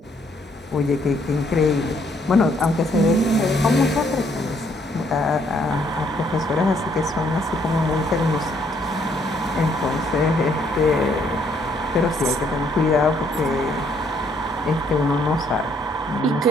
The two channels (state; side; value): normal; both; correlation 0.68